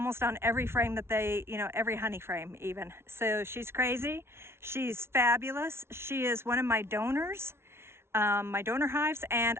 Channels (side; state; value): left; late; 0.12 ms